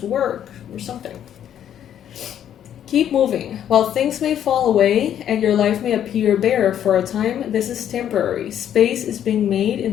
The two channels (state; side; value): quieter; right; 10.1 dB